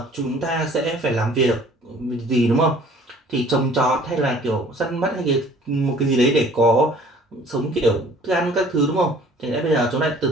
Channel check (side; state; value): both; normal; correlation 0.52